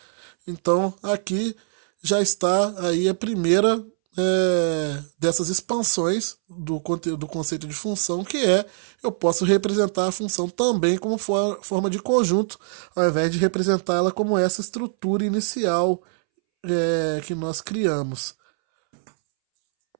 Então, aqui já está aí a primeira dessas expansões do conceito de função, que é eu posso representar a função também como forma de conjunto, ao invés de representar ela como essa estrutura inicial que nós criamos.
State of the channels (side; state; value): left; silent; 63 dB below the other